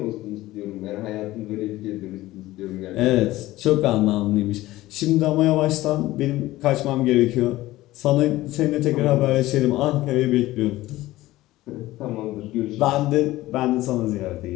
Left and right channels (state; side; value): quieter; right; 17.0 dB